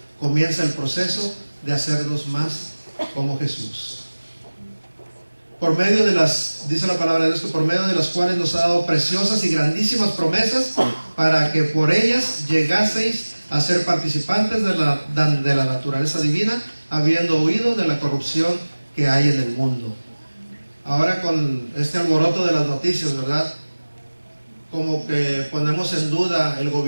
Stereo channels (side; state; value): both; inverted; correlation -1.00